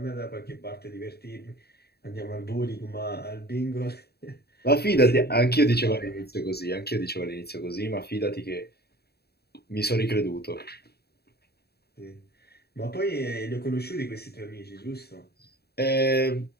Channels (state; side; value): late; right; 0.47 ms